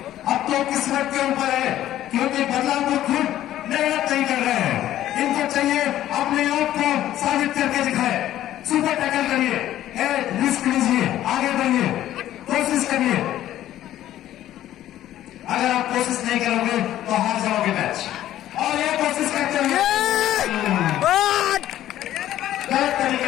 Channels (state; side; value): quieter; right; 12.9 dB